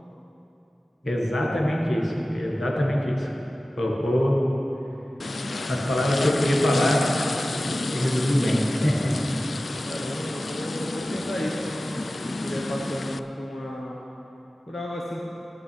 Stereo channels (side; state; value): both; normal; correlation 0.96